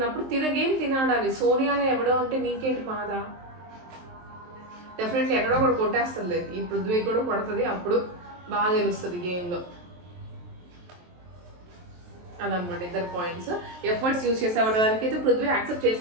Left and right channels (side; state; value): left; late; 23 ms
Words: గేమ్ తినాడాలి. సోనియాని ఎవడో అంటే నీకేంటి బాధ? డెఫినెట్లీ ఎక్కడో కూడా కొట్టేస్తుంది. ఈ పృథ్వీ కూడా కొడుతుంది, అప్పుడు బాగా తెలుస్తుంది గేమ్లో. అదనమాట ఇద్దరు పాయింట్స్. ఎఫర్ట్స్ యూజ్ చేసావు దానికైతే పృథ్వీ యాక్సెప్ట్